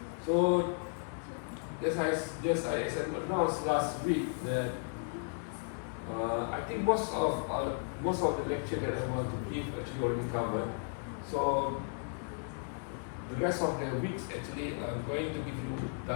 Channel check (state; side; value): silent; right; 55 dB below the other